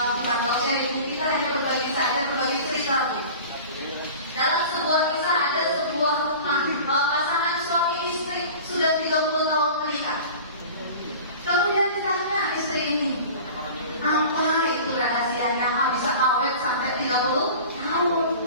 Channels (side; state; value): both; inverted; correlation -0.39